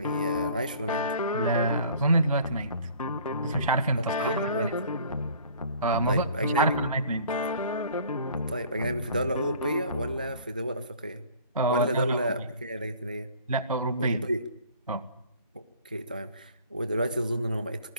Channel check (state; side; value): inverted; both; correlation -0.51